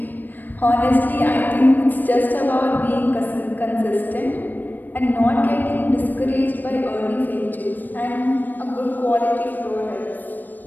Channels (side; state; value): right; late; 0.089 ms